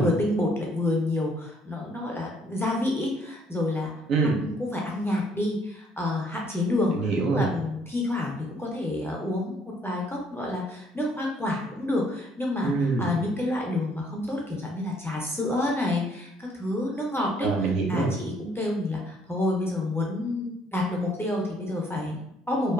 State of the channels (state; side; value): normal; both; correlation 0.65